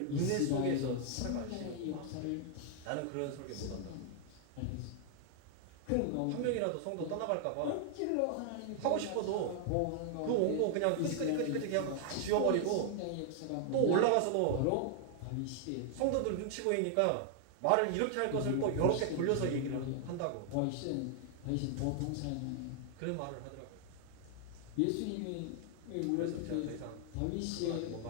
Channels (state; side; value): different; both; correlation 0.00